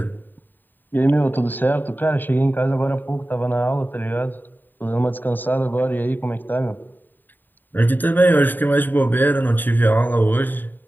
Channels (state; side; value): late; right; 0.091 ms